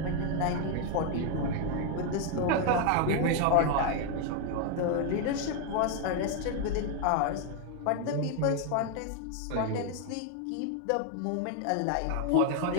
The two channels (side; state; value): both; different; correlation 0.00